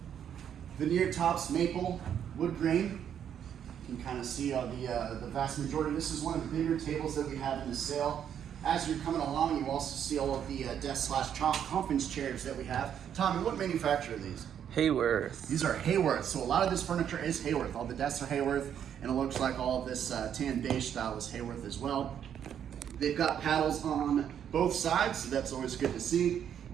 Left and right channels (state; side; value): quieter; left; 9.0 dB